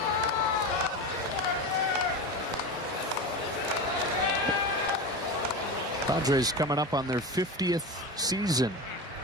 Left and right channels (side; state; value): both; normal; correlation 0.24